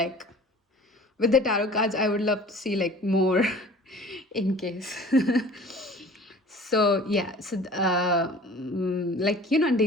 with the tarot cards, I would love to see, like, more in case. So, yeah. So, like,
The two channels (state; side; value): normal; both; correlation 0.45